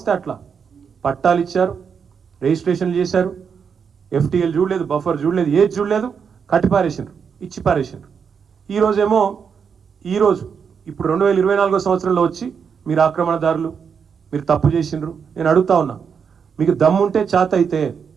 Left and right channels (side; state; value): left; quieter; 6.6 dB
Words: అట్లా పట్టాలు ఇచ్చారు, రిజిస్ట్రేషన్లు చేశారు, FTL చూడలేదు, బఫర్ చూడలేదు, ఏది చూడలేదు, కట్టి పారేసిండ్రు, ఇచ్చి పారేసిండ్రు. ఈరోజు ఇప్పుడు 2024 సంవత్సరంలో వచ్చి మీరు ఆక్రమణదారులు, మీరు తప్పు చేసిండ్రు. నేను అడుగుతా ఉన్నా, మీకు దమ్ముంటే చేత అయితే